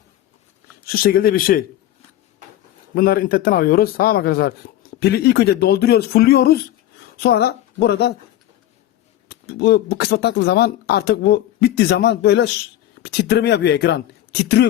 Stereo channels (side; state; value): right; quieter; 13.1 dB